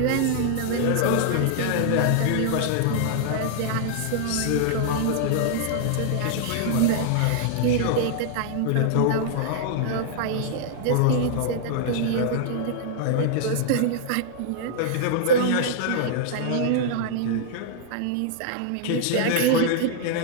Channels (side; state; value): both; different; correlation -0.01